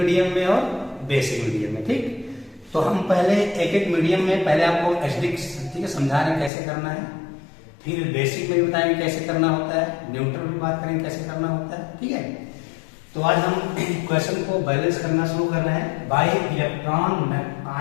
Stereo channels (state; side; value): drops out; right; at 6.5 s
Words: में और बेसिक मीडियम में। ठीक, तो हम पहले एक एक मीडियम में पहले आपको एसिडिक, ठीक है, समझा रहे हैं कैसे करना है, फिर बेसिक में भी बताएंगे कैसे करना होता है, न्यूट्रल में बात करेंगे कैसे करना होता है। ठीक है, तो आज हम इक्वेशन को बैलेंस करना शुरू कर रहे हैं बाय इलेक्ट्रॉन